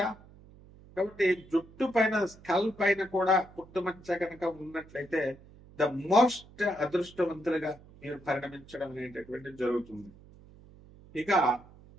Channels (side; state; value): right; noise; hum, 22 dB below the sound